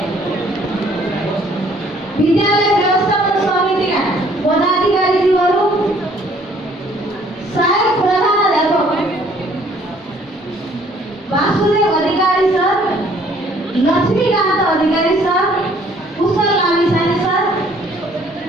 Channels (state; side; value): normal; both; correlation 0.60